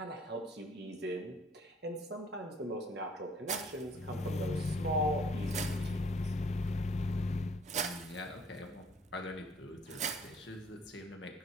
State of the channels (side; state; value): both; normal; correlation 0.58